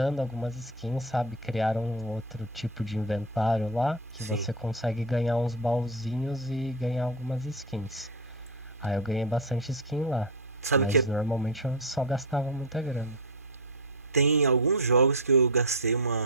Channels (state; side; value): normal; both; correlation 0.11